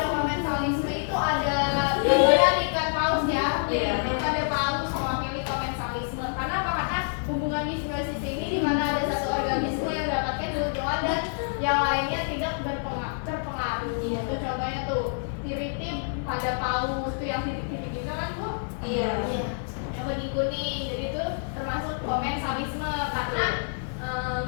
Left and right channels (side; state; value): right; silent; digital silence